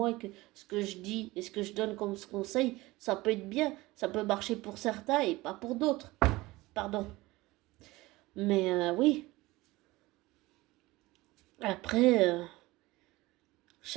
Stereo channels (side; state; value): left; quieter; 20.0 dB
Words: et que ce que je dis et ce que je donne comme conseil, ça peut être bien, ça peut marcher pour certains et pas pour d'autres. Pardon. Mais oui. Après,